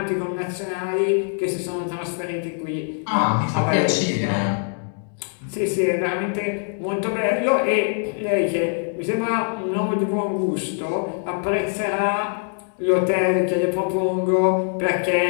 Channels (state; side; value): silent; right; 56 dB below the other